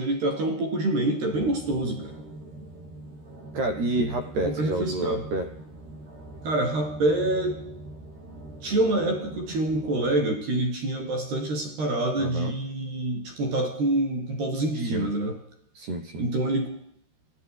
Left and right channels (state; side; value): late; left; 13 ms